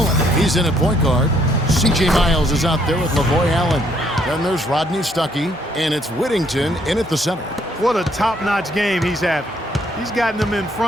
he's in at point guard. C.J. Miles is out there with Lavoy Allen. Then there's Rodney Stuckey, and it's Whittington in at the center. What a top-notch game he's having. He's gotten them in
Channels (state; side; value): normal; both; correlation 0.68